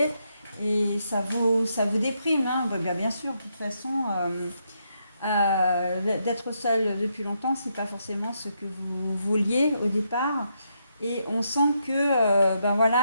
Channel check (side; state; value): both; inverted; correlation -0.79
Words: et ça vous déprime, hein. Bien sûr, de toute façon, d'être seul depuis longtemps, c'est pas forcément ce que vous vouliez au départ. Et on sent que,